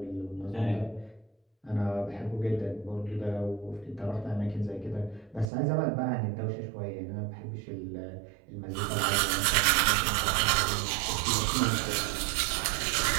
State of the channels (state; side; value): drops out; left; at 5.5 s